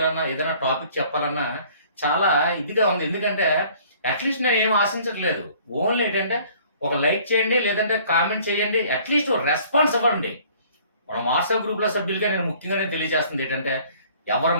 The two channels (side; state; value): both; inverted; correlation -0.54